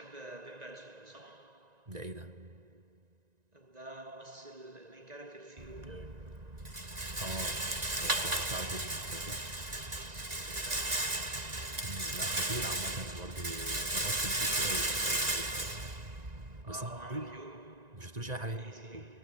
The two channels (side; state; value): left; late; 1.9 ms